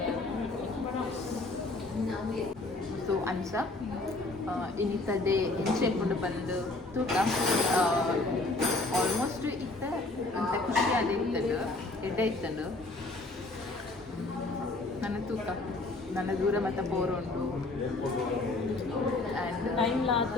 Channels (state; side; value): quieter; right; 3.0 dB